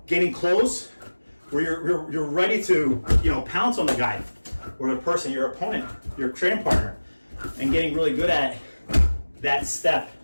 getting close, where you're ready to pounce on the guy or the person, your opponent, your training partner, and getting really good at that step.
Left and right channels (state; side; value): inverted; both; correlation -1.00